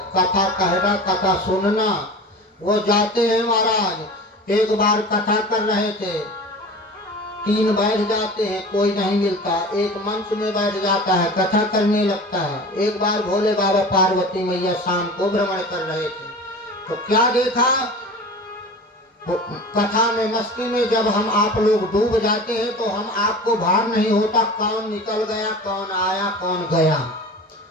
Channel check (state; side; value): normal; both; correlation 0.36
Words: कथा कहना, कथा सुनना। वो जाते हैं महाराज, एक बार कथा कर रहे थे, 3 बैठ जाते हैं, कोई नहीं मिलता, एक मंच में बैठ जाता है, कथा करने लगता है। एक बार भोले बाबा पार्वती मैया शाम को भ्रमण कर रहे थे, तो क्या देखा? कथा में, मस्ती में जब हम आप लोग डूब जाते हैं तो हम आपको भार नहीं होता कौन निकल गया, कौन आया, कौन गया।